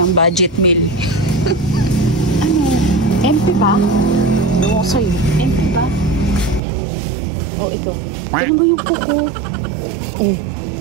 budget meal. Ano? MP ba? Ewan ko sa'yo. MP ba? O, ito. Ano ba yung kuko?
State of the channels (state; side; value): drops out; left; at 6.6 s